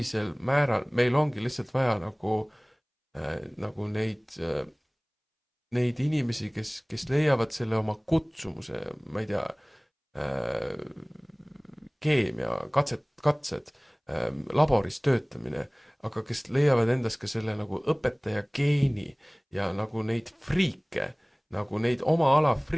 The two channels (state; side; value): identical; both; correlation 1.00